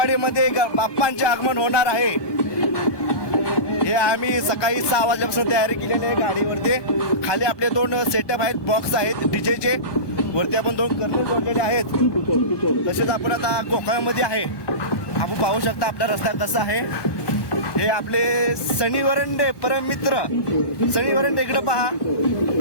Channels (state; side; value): late; right; 1.2 ms